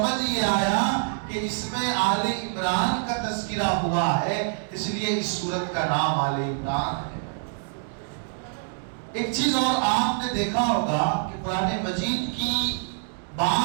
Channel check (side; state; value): left; silent; digital silence